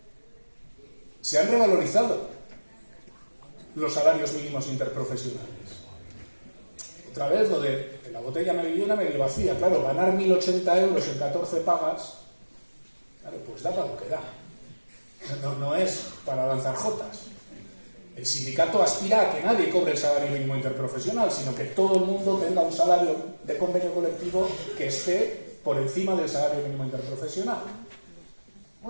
Se han revalorizado los salarios mínimos interprofesionales. Otra vez lo de la botella medio llena, medio vacía. Claro, ganar 1.080 euros en 14 pagas, claro, pues da para lo que da. No es para lanzar jotas. El sindicato aspira a que nadie cobre el salario mínimo interprofesional, sino que todo el mundo tenga un salario de convenio colectivo que esté por encima del salario mínimo interprofesional.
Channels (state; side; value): inverted; both; correlation -1.00